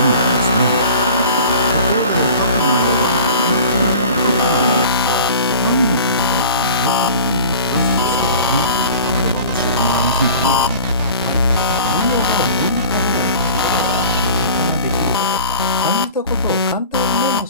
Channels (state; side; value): inverted; both; correlation -0.42